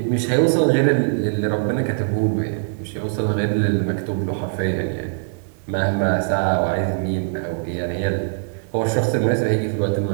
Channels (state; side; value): silent; left; digital silence